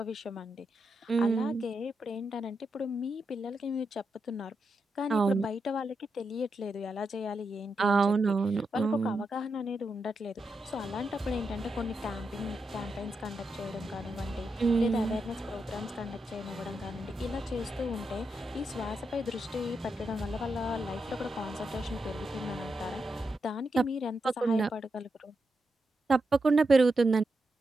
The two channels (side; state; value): both; normal; correlation 0.85